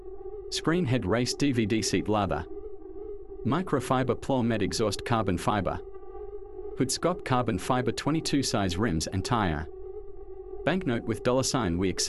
Screen head race DVD seat leather. Microfiber plow med exhaust carbon fiber. Hood scope carbon fiber 22 size rims and tire. Banknote with $sign. We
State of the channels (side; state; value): both; identical; correlation 1.00